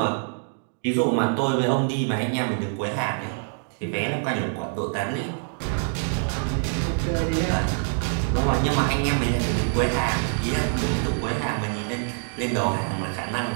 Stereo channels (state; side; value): silent; left; digital silence